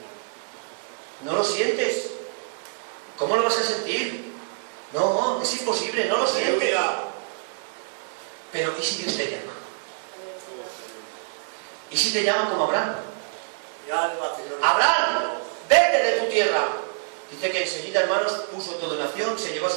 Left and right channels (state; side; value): silent; left; digital silence